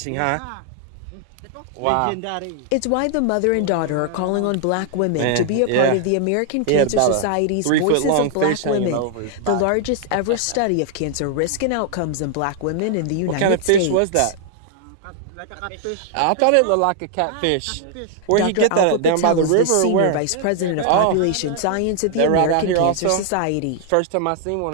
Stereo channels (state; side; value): different; both; correlation 0.00